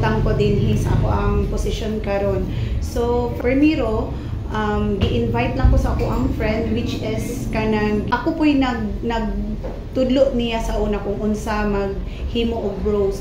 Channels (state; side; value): identical; both; correlation 1.00